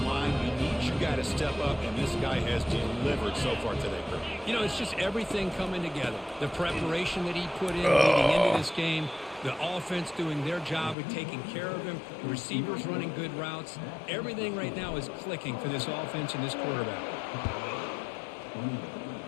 line, you need your guy to step up, and this guy has delivered so far today, Kurt. You know, it's just everything coming together. The preparation that he put in leading into this game, the offense doing their job of taking care of him, the receivers running good routes. Everything right now is clicking for this offense and this quarterback.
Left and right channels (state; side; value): drops out; right; at 11.0 s